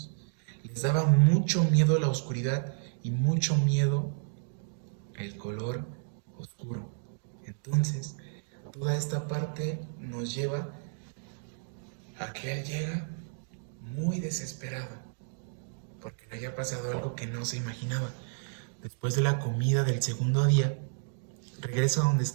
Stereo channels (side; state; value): left; silent; digital silence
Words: Les daba mucho miedo la oscuridad y mucho miedo el color oscuro. Entonces, toda esta parte nos lleva a que él llega muy desesperado, porque le había pasado algo que no se imaginaba. Después de la comida del segundo día, regresa a donde